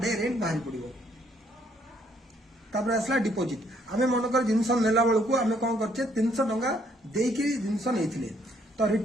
डे रेंट बाहर पड़ो तापर आसला डिपोजिट हमें मनकर जिनस नेला बेलू आम कौन करछे 300 टका देकी जिनस नहीं तो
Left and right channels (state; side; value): normal; both; correlation 0.68